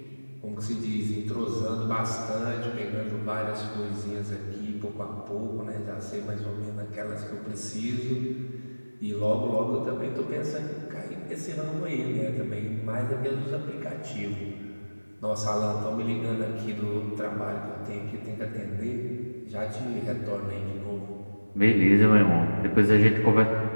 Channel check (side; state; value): both; inverted; correlation -1.00